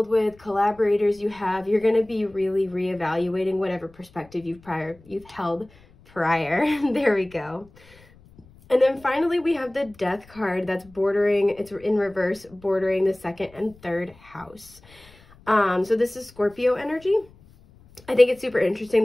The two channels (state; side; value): noise; left; rumble, 26 dB below the sound